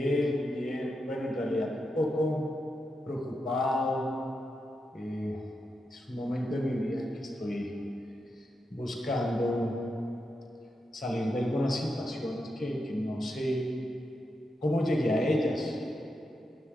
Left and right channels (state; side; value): normal; both; correlation 0.86